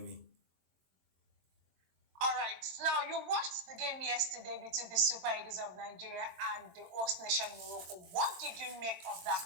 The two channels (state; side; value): late; left; 22 ms